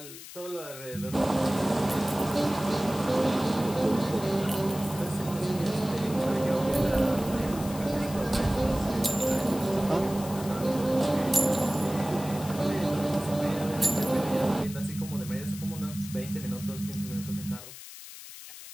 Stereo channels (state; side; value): noise; left; hiss, 14 dB below the sound